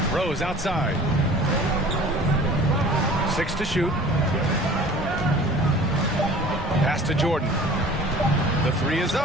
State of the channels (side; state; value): both; normal; correlation 0.45